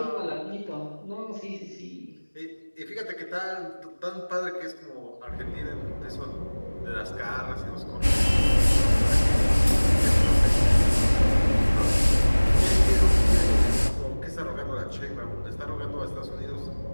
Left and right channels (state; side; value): inverted; both; correlation -1.00